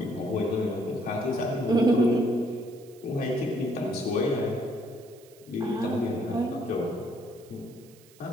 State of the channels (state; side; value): noise; right; hiss, 26 dB below the sound